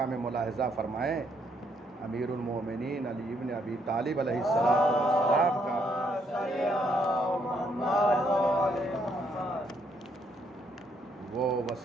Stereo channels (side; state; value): both; normal; correlation 0.72